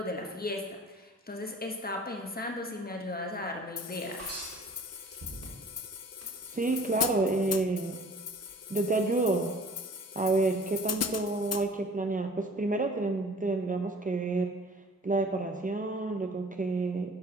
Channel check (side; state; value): both; normal; correlation 0.48